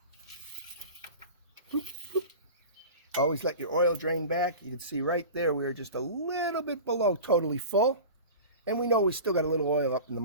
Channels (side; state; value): both; inverted; correlation -0.34